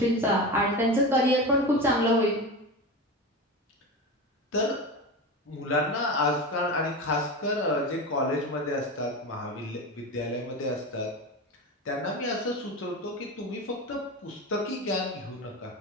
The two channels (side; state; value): both; normal; correlation 0.24